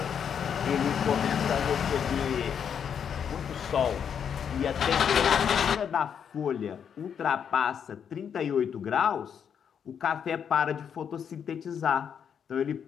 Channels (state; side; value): quieter; right; 7.8 dB